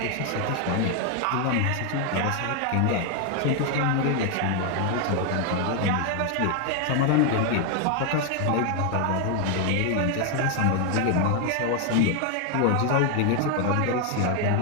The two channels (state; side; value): different; both; correlation 0.01